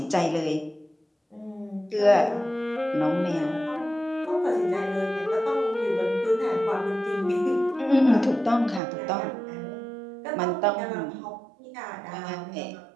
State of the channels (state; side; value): drops out; left; at 8.8 s